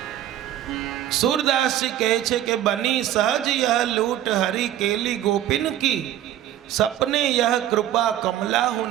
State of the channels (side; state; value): left; quieter; 12.3 dB